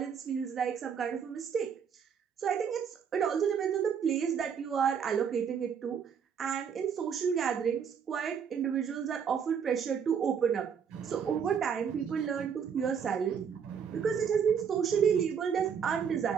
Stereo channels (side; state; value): left; quieter; 7.2 dB